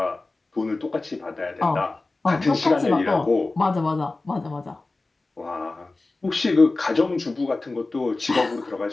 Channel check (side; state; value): right; quieter; 3.3 dB